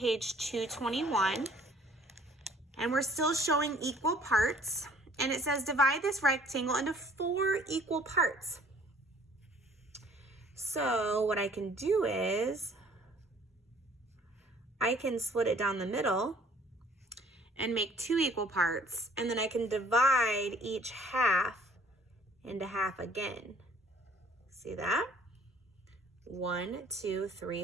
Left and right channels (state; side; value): normal; both; correlation 0.56